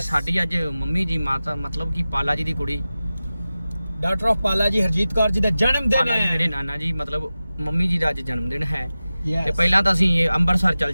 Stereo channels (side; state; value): both; inverted; correlation -0.95